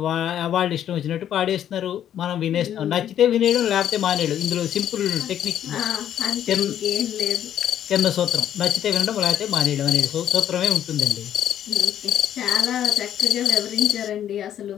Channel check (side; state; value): right; quieter; 10.4 dB